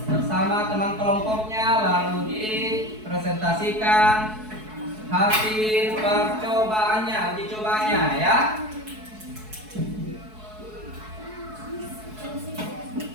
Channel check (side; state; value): left; late; 4.7 ms